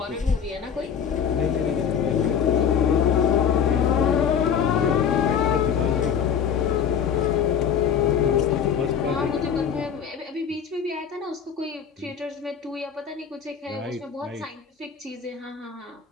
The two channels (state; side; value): quieter; right; 7.6 dB